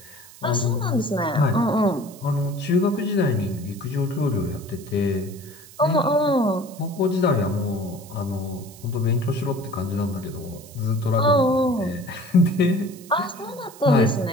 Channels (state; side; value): noise; right; hiss, 20 dB below the sound